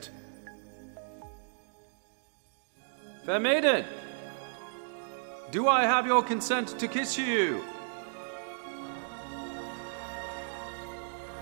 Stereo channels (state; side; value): silent; left; digital silence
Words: Fair maiden, do I have your consent to kiss you?